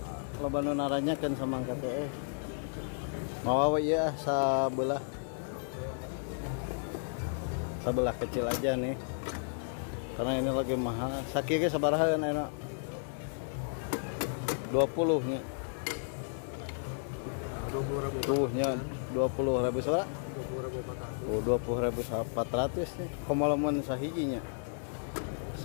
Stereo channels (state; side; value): silent; right; digital silence